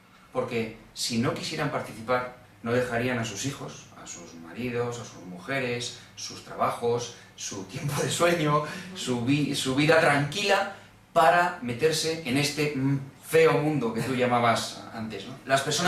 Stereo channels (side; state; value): both; identical; correlation 1.00